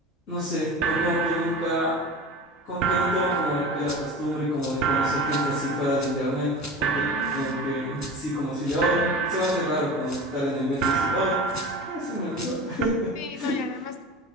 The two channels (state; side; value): normal; both; correlation 0.34